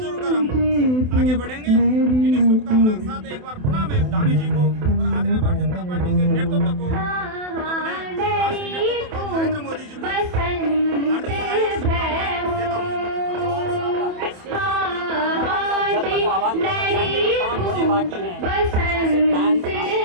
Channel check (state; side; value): late; left; 28 ms